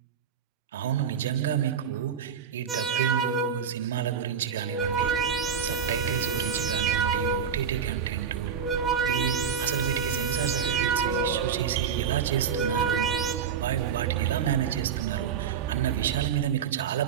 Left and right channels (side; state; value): left; quieter; 7.2 dB